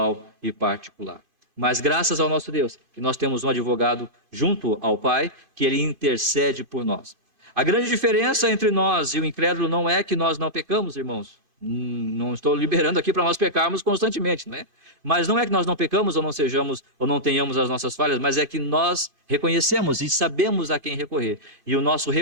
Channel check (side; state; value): left; late; 2.5 ms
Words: e particular. Mas graças ao nosso Deus, que nós temos um advogado junto ao Pai, que ele intercede por nós. A grande diferença entre nós e o incrédulo não é que nós não pecamos, irmãos. Não estou liberando aqui para nós pecarmos constantemente, né? Mas não é que nós não pecamos ou não sejamos ou não tenhamos as nossas falhas, mas é que nós reconhecemos e sabemos a quem recorrer. E o nosso